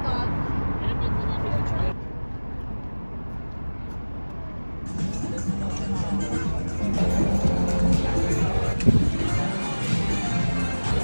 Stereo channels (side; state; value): both; inverted; correlation -1.00